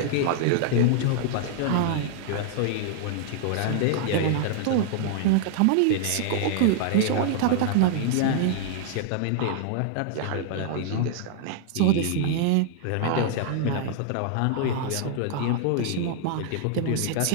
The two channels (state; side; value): different; both; correlation -0.01